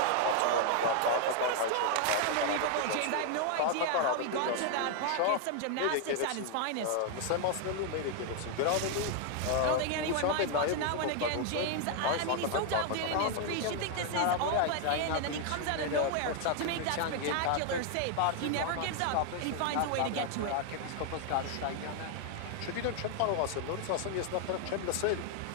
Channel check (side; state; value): both; different; correlation 0.00